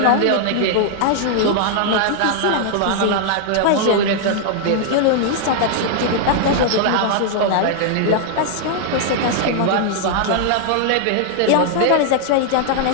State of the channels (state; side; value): different; both; correlation 0.00